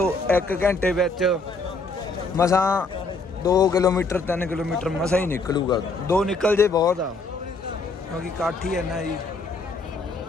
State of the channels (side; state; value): right; quieter; 3.5 dB